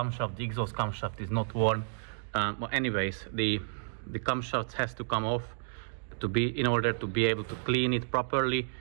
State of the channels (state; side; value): silent; left; digital silence